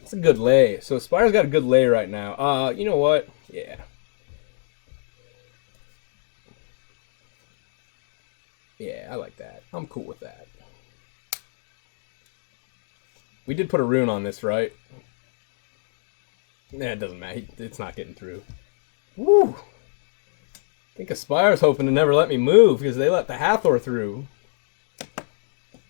a good lay. So Spire's got a good lay right now. You know what? Yeah. Yeah, I like that. I'm cool with that. We did put a rune on this, right? Nah, it doesn't matter. It's not getting through. Woo! I think Aspire's hoping to never let me move because they let the Hathor through.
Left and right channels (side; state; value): right; silent; digital silence